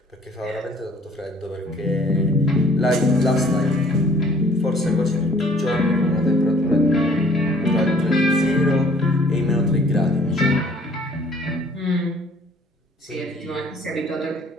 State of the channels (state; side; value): normal; both; correlation 0.57